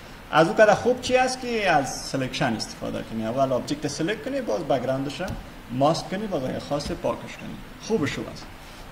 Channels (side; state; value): both; identical; correlation 1.00